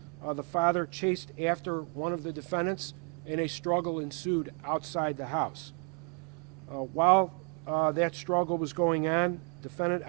the father chased after one of the defendants, and a struggle ensued outside the house. While that struggle was going on, defendant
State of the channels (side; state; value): left; quieter; 37.5 dB